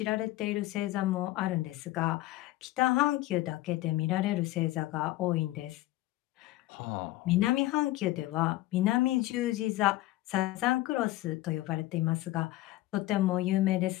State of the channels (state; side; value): quieter; right; 17.2 dB